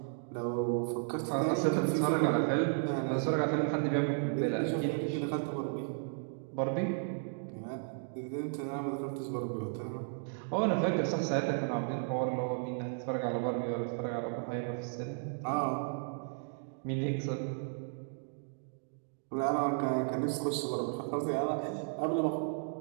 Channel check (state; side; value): silent; left; digital silence